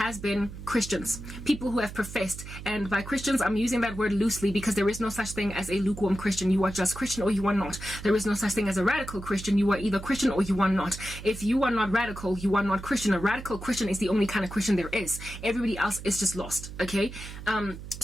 been Christians, people who have professed, and by Christians I'm using that word loosely because there is no such thing as a lukewarm Christian. You are just Christian or you are not. There is no such thing as a radical Christian. You are either Christian or you are not. If you are not radical, you are not Christian. A radical Christian is the only kind of Christian there is. Everybody else is just lost, okay?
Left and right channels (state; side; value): noise; right; hum, 12 dB below the sound